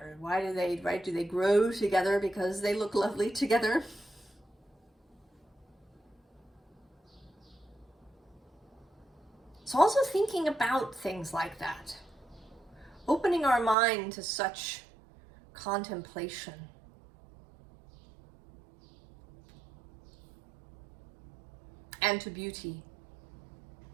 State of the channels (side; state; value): left; drops out; at 13.8 s